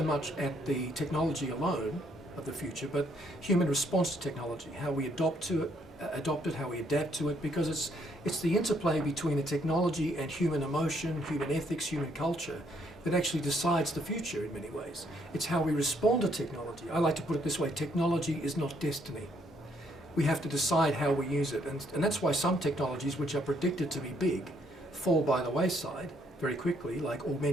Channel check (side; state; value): both; normal; correlation 0.69